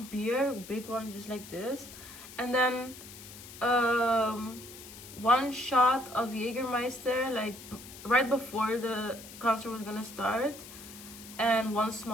beer, big one, just like this. And then 1 shot of Jägermeister, like right before the concert was gonna start. And 1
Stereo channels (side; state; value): left; noise; hiss, 15 dB below the sound